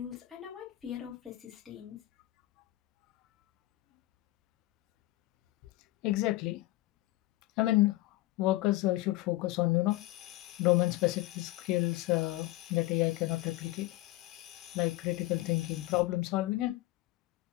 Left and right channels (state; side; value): quieter; right; 18.0 dB